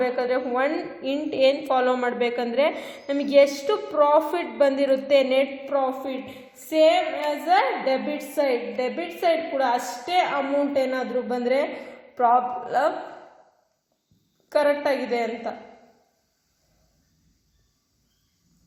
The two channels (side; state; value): both; identical; correlation 1.00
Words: ಏನು ಫಾಲೋ ಮಾಡಬೇಕಂದ್ರೆ ನಮಗೆ ಎಷ್ಟು ಪ್ರಾಫಿಟ್ ಬಂದಿರುತ್ತೆ, net profit same as a debit side ಕೂಡ ಅಷ್ಟೇ ಅಮೌಂಟ್ ಏನಾದರೂ ಬಂದರೆ ಪ್ರಾಬ್ಲಮ್ ಕರೆಕ್ಟಾಗಿದೆ ಅಂತ.